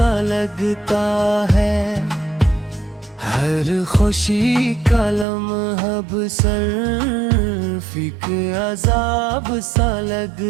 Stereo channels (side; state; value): left; drops out; at 5.2 s